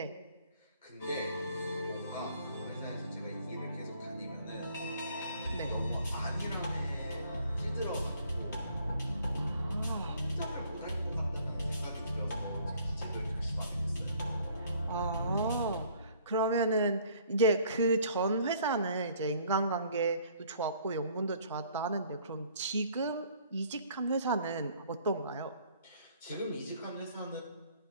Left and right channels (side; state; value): both; inverted; correlation -0.58